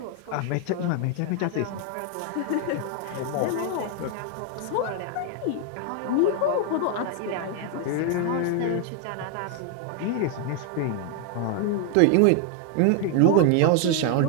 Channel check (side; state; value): both; different; correlation 0.00